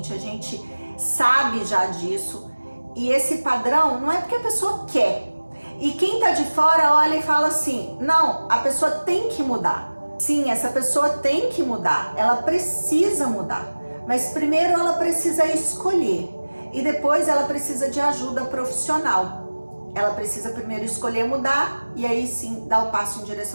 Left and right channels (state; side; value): inverted; both; correlation -1.00